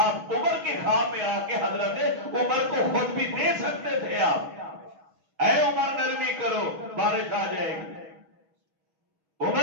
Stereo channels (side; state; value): left; late; 6.3 ms